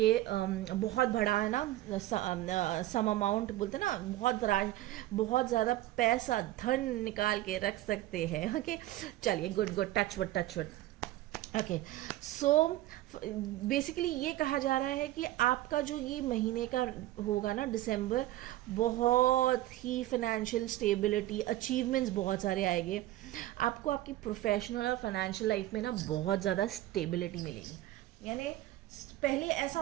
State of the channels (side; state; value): left; quieter; 15.7 dB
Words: बहुत बड़ा है ना सम अमाउंट बोलते ना, बहुत ज़्यादा पैसा धन निकाल के रख सकते हैं। ओके, चलिए good touch wood. Okay, so basically ये कहा जा रहा है कि आपका जो ये महीने का होगा ना दिसंबर, बहुत ही फाइनेंशियल स्टेबिलिटी, अचीवमेंट्स बहुत सारे आएंगे आपको। आपकी प्रोफेशनल और फाइनेंशियल लाइफ में ना बहुत ज़्यादा स्टेबिलिटी मिलेगी। यानी पहले ऐसा